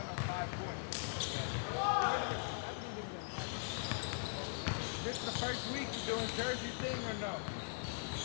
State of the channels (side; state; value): right; silent; digital silence